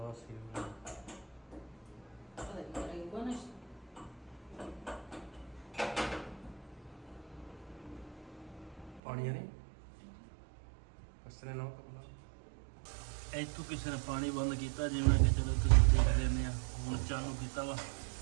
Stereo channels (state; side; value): drops out; left; at 9.0 s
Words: ਹੀ ਪਾਣੀ ਨਹੀਂ ਕਸਰੇ ਨਾ ਕਰਨਾ ਇੱਥੋਂ ਕਿਸੇ ਨੇ ਪਾਣੀ ਬੰਦ ਕੀਤਾ ਜਿਵੇਂ ਕਿ ਚਲੋ ਤੁਸੀਂ ਦੇਖ ਲੈਂਦੇ ਆ ਹੁਣ ਚਾਲੂ ਕੀਤਾ ਵਾ